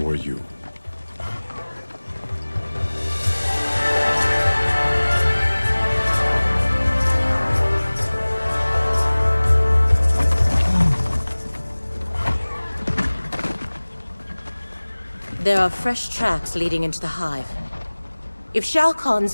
were you. There are fresh tracks leading into the hive. If Shao Kahn's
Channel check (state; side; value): inverted; both; correlation -1.00